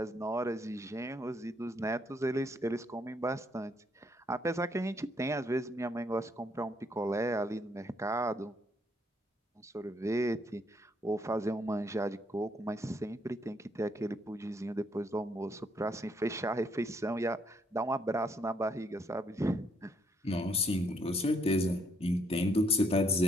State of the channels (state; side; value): normal; both; correlation 0.71